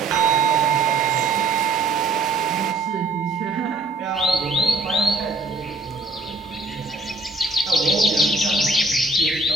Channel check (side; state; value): left; quieter; 3.1 dB